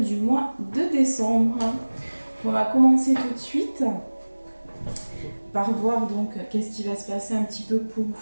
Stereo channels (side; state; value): both; inverted; correlation -1.00